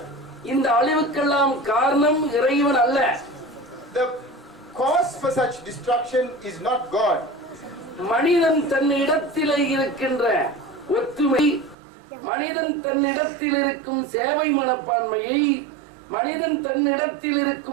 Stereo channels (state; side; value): drops out; left; at 11.8 s